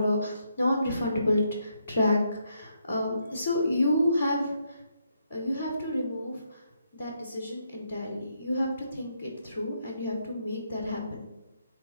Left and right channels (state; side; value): inverted; both; correlation -0.77